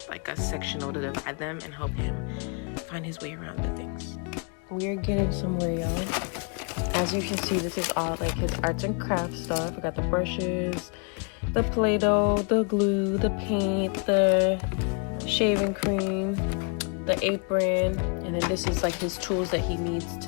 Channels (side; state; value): right; quieter; 37.1 dB